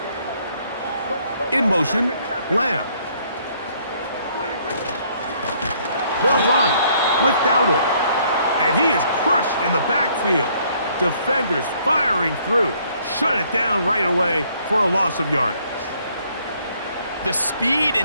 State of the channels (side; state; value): both; inverted; correlation -0.65